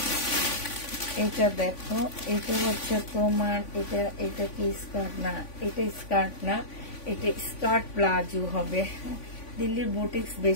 এটা দেখো, এটা হচ্ছে তোমার, এটা কি স্কার্ট না, এটা স্কার্ট না, এটা স্কার্ট প্লাজো হবে। দিল্লির বুটিক্স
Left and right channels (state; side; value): late; right; 3.5 ms